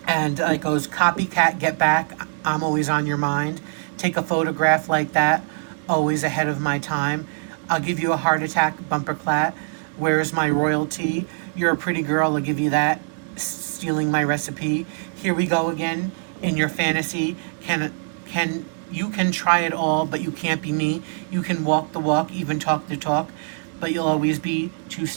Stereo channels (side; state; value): left; silent; 62 dB below the other